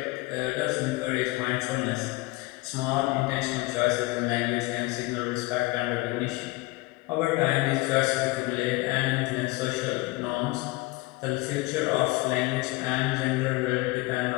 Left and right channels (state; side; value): quieter; right; 22.5 dB